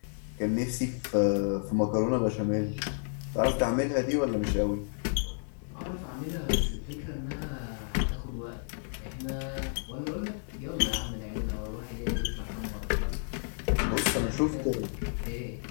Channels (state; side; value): silent; right; 57 dB below the other